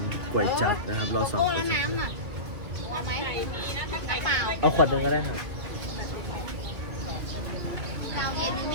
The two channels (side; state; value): left; late; 2.9 ms